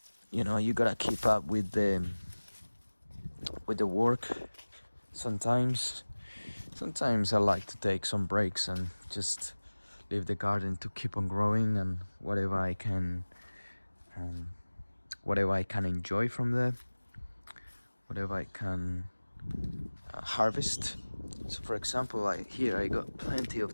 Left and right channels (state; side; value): inverted; both; correlation -1.00